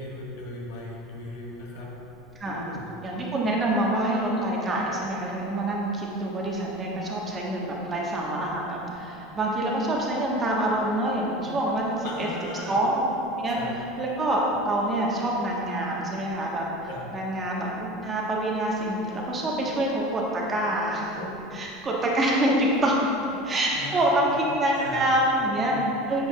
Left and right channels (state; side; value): noise; right; rumble, 26 dB below the sound